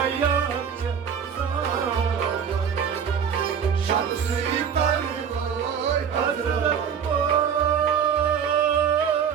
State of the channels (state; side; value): quieter; left; 7.5 dB